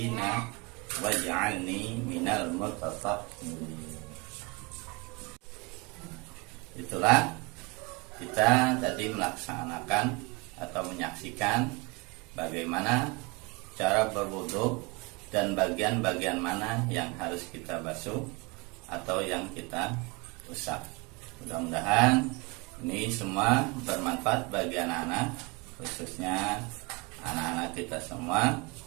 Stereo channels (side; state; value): left; quieter; 27.4 dB